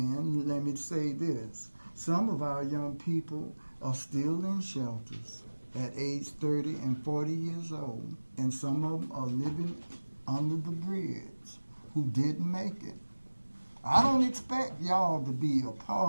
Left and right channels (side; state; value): both; inverted; correlation -1.00